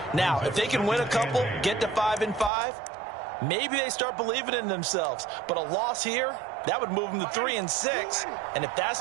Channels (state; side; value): drops out; left; at 2.5 s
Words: Now, if they can win a couple, get to 5-5, maybe they start believing in themselves. But a loss here, that would move them to 3-6. And if that's